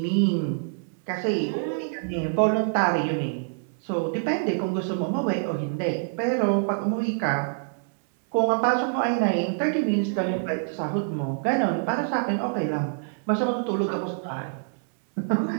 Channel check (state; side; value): silent; left; 61 dB below the other